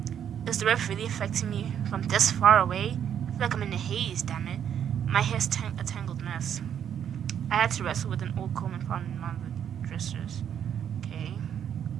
Is the ref really affecting me from this far away? I feel like I'm in a haze, damn it. My hair's a tangled mess. I had to wrestle with an old comb and found in one of the dressers. Okay.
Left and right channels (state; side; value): quieter; left; 9.0 dB